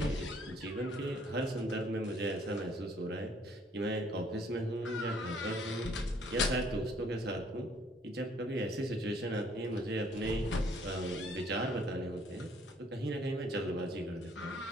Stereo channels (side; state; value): both; normal; correlation 0.62